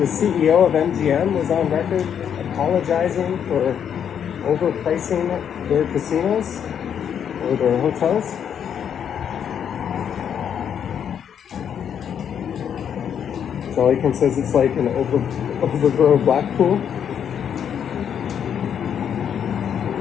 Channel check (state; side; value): quieter; right; 8.4 dB